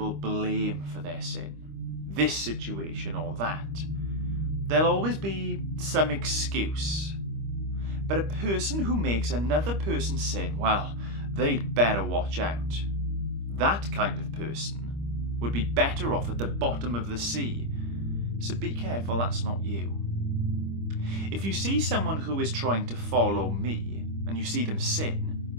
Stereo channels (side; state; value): left; late; 25 ms